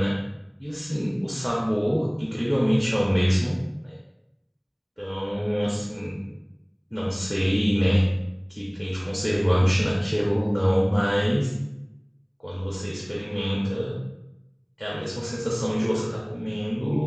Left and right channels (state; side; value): identical; both; correlation 1.00